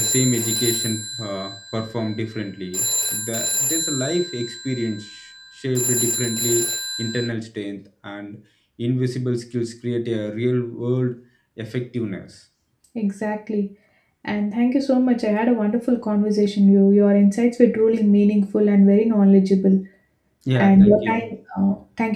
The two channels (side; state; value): both; identical; correlation 1.00